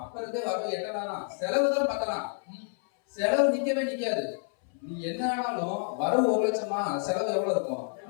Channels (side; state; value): right; silent; 59 dB below the other